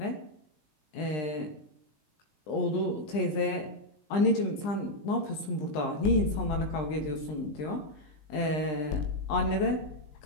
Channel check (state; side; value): late; right; 20 ms